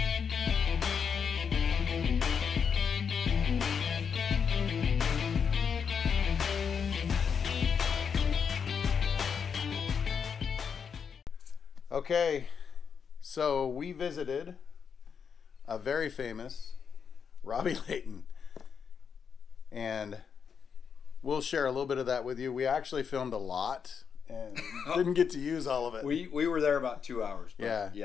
Okay, so we visited a very famous Robby Layton, and we'll share a little bit of that with you. We actually filmed a lot and didn't get to use all of it. We were there about 2 hours. But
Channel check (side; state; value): right; quieter; 6.7 dB